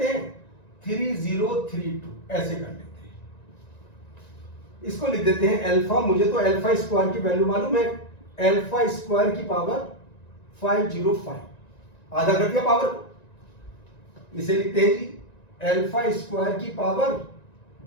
हैं, 3032 ऐसे कर लेते हैं। इसको लिख देते हैं अल्फा, मुझे तो अल्फा स्क्वायर की वैल्यू मालूम है, अल्फा स्क्वायर की पावर 505, आधा कर दिया पावर को। इसे लिखते हैं जी अल्फा स्क्वायर की पावर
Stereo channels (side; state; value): right; late; 1.9 ms